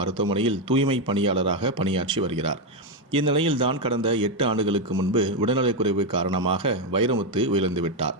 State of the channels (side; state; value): both; normal; correlation 0.06